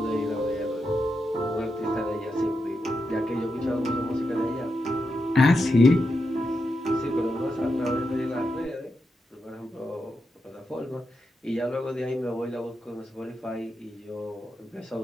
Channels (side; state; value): both; normal; correlation 0.86